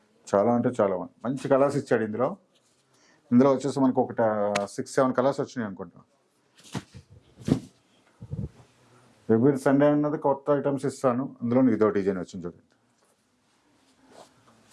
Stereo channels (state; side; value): identical; both; correlation 1.00